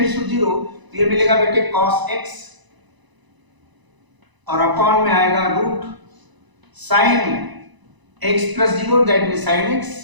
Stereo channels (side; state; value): left; late; 1.0 ms